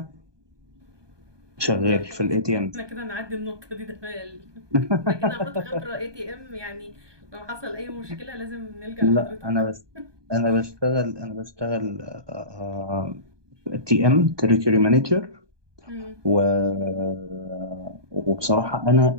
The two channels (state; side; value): late; left; 1.2 ms